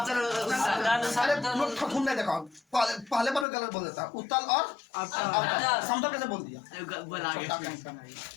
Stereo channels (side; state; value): right; drops out; at 3.5 s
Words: अरे तुम लोग ठकुन नहीं देखा, पहले पर गलत बोल देता। उत्तल और अवतल। समतल कैसे बोल दिया?